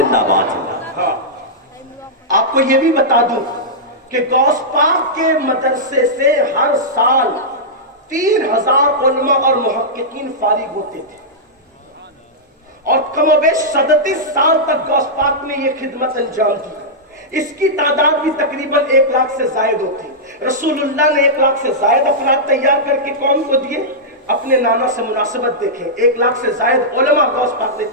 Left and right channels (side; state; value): both; normal; correlation -0.11